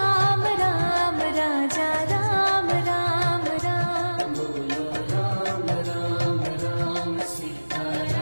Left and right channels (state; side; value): inverted; both; correlation -1.00